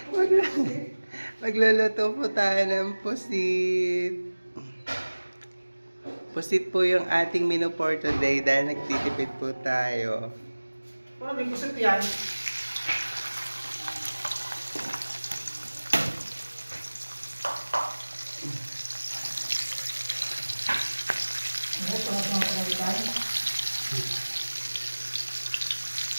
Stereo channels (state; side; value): inverted; both; correlation -1.00